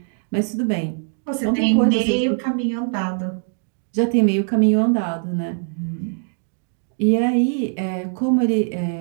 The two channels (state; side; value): silent; left; 56 dB below the other